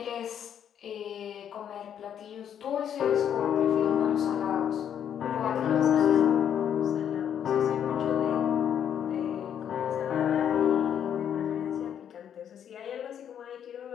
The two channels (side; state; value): right; quieter; 9.1 dB